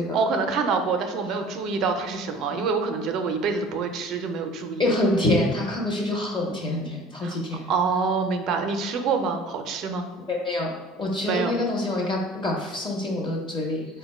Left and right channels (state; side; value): normal; both; correlation 0.46